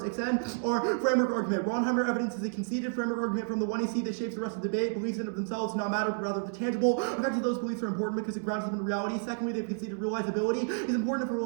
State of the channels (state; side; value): silent; left; digital silence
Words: extend our framework argument. Ronheimer evidence is a conceded framework argument from the 1EC that shapes the rest of the debate. Beliefs in of themselves do not matter, but rather the tangible effects of those beliefs are important because it grounds them in reality. Secondly, they've conceded realizability is important for